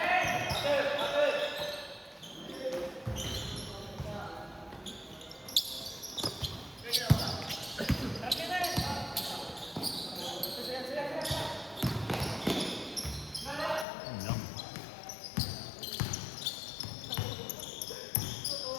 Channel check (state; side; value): drops out; right; at 13.9 s